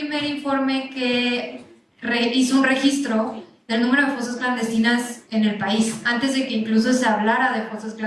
informe que hizo un registro del número de fosas clandestinas en el país, antes de que incluso se hablara de fosas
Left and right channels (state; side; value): identical; both; correlation 1.00